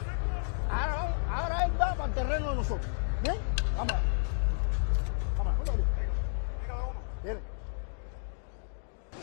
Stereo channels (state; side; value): silent; right; digital silence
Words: Verde, is the first world champion out of Mazatlan, Sinaloa, who defended his world title twice. What